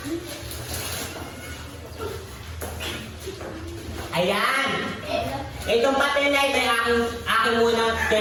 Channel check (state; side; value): identical; both; correlation 1.00